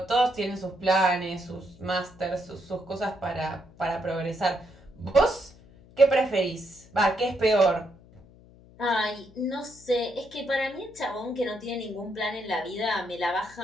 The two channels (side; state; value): left; noise; hum, 24 dB below the sound